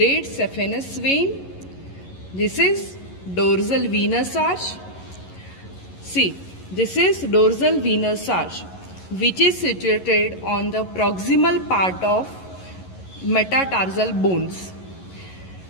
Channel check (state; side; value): late; right; 11 ms